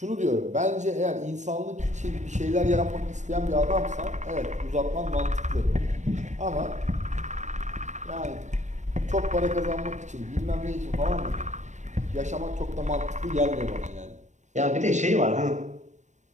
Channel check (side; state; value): left; late; 0.34 ms